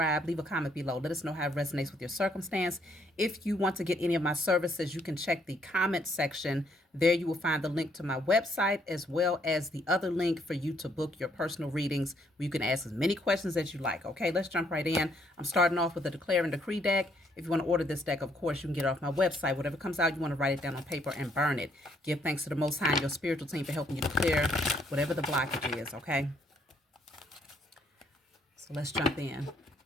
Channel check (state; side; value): normal; both; correlation 0.69